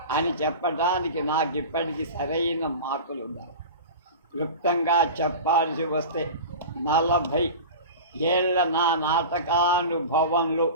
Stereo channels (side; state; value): both; inverted; correlation -0.32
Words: అని చెప్పడానికి నాకు ఇప్పటికీ సరైన మార్కులు ఉన్నాయి. క్లుప్తంగా చెప్పాల్సి వస్తే 40 ఏళ్ల నా నాటకానుభవంలో